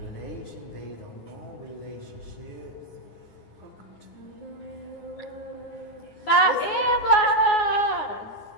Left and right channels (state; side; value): late; right; 9.7 ms